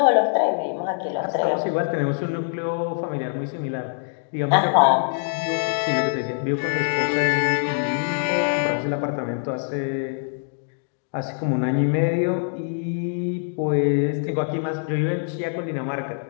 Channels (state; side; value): silent; right; digital silence